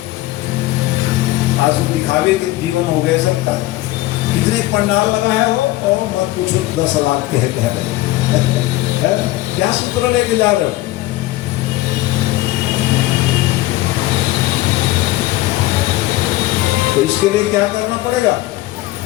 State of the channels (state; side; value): quieter; right; 17.6 dB